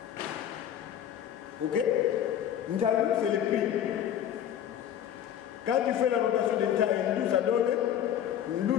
Ok? Ntalu, c'est le prix. Quand tu fais la rotation de Ntalu, ça donne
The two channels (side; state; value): right; quieter; 10.1 dB